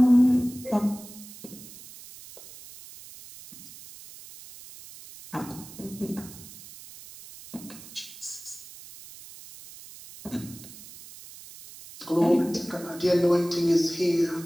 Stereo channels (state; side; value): noise; right; hiss, 17 dB below the sound